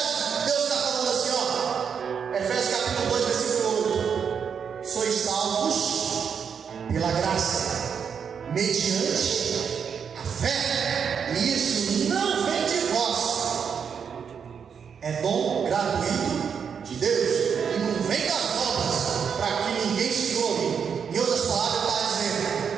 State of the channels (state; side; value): quieter; left; 6.9 dB